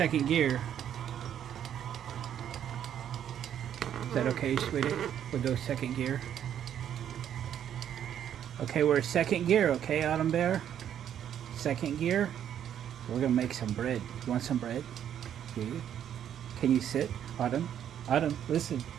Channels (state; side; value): quieter; left; 9.8 dB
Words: gear. Is that okay, sweetie? We'll go second gear. Okay, we're at second gear, okay, Autumn Bear? Second gear. We're gonna make some bread. You want some bread? Yeah. Can you sit, Autumn? Autumn, listen.